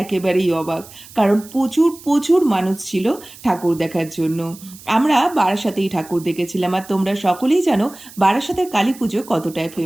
একেবারেই অবাক। কারণ প্রচুর প্রচুর মানুষ ছিল ঠাকুর দেখার জন্য। আমরা বারাসাতেই ঠাকুর দেখেছিলাম, আর তোমরা সকলেই জানো বারাসাতের কালী পুজো কতটাই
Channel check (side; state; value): right; noise; hiss, 19 dB below the sound